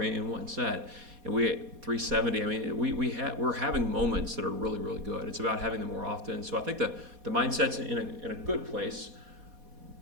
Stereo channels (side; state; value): left; late; 4.2 ms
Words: in one set. And we had 370. I mean, we're having moments that are really, really good. It's about having them more often. So I think the mindset's in a good place,